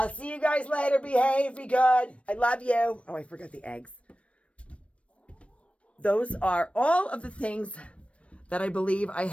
see you guys later. Behave. Be good. I love you. Oh, I forgot the eggs. Those are all of the things that I believe I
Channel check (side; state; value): right; late; 0.062 ms